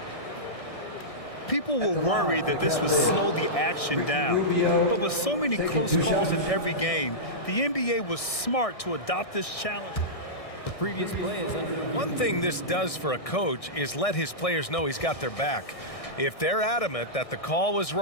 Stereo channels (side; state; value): right; late; 1.6 ms